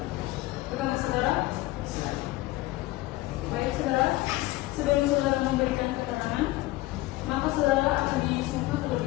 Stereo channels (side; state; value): right; quieter; 18.7 dB